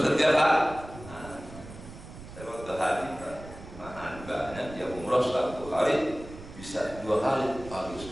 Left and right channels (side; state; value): right; noise; rumble, 15 dB below the sound